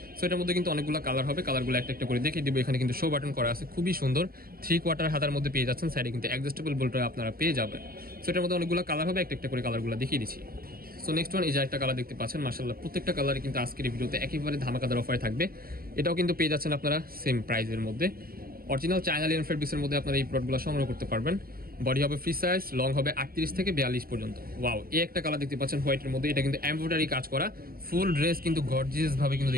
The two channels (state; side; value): late; left; 0.43 ms